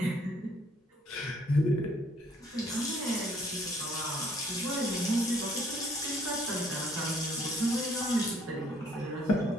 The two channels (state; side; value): normal; both; correlation 0.62